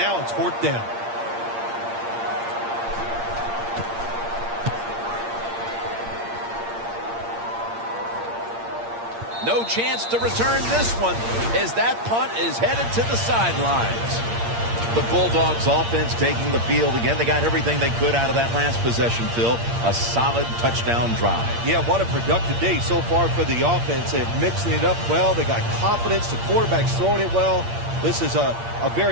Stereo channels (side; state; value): left; late; 8.7 ms